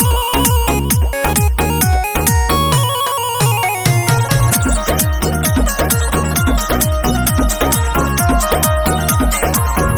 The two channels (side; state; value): both; identical; correlation 1.00